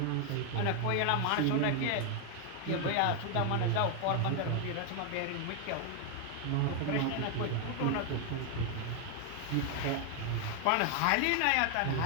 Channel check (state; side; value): different; both; correlation 0.00